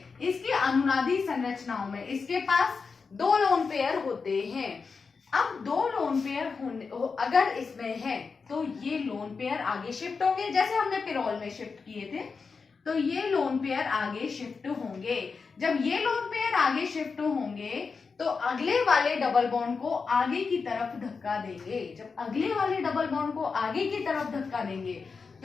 इसकी अनुनादी संरचनाओं में इसके पास दो लोन पेयर होते हैं। अब दो लोन पेयर अगर इसमें है तो ये लोन पेयर आगे शिफ्ट होंगे, जैसे हमने पिरोल में शिफ्ट किए थे, तो ये लोन पेयर आगे शिफ्ट होंगे। जब ये लोन पेयर आगे शिफ्ट होंगे तो अगले वाले डबल बॉन्ड को आगे की तरफ धक्का देंगे। जब अगले वाले डबल बॉन्ड को आगे की तरफ धक्का देंगे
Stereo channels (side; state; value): right; quieter; 5.0 dB